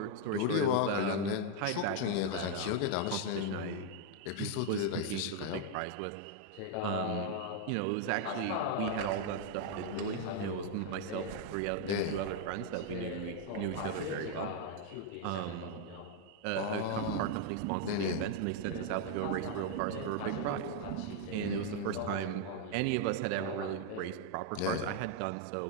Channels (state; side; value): different; both; correlation 0.00